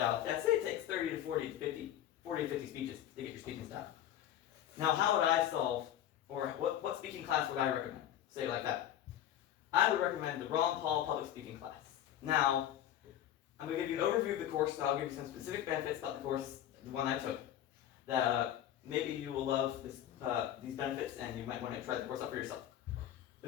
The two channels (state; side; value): quieter; right; 11.5 dB